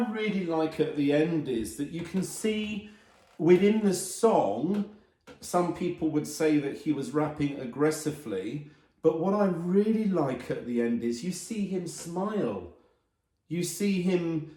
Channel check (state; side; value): identical; both; correlation 1.00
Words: really like at the end is that you can see within the song, some people would say that he was rapping aggressively, but what I really like at the end is you see him smile. You see him